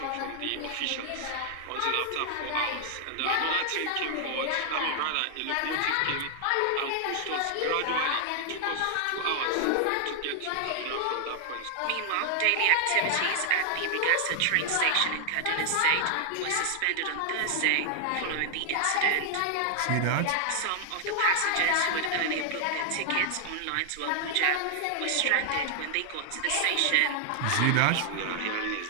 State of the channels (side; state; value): both; different; correlation 0.00